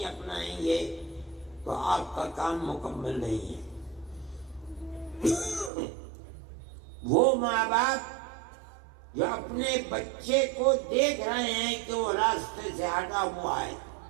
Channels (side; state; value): left; drops out; at 5.7 s